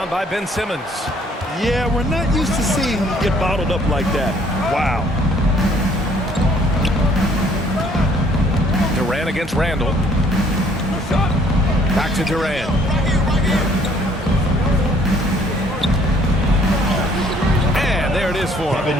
by Ben Simmons. Yeah, we're not used to seeing him get bottled up like that. Wow. Durant against Randle. Back to Durant. And there it is for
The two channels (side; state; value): both; normal; correlation 0.61